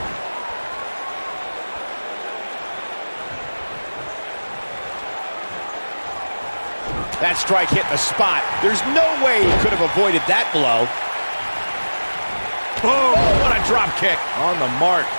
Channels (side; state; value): both; inverted; correlation -1.00